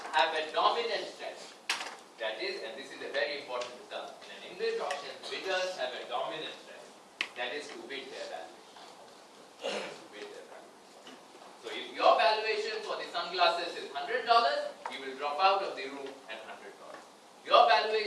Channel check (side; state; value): both; identical; correlation 1.00